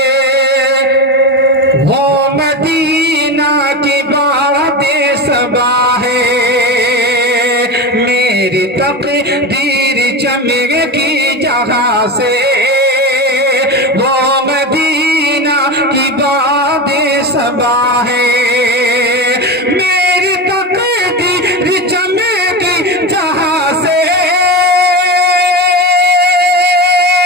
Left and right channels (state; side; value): normal; both; correlation 0.20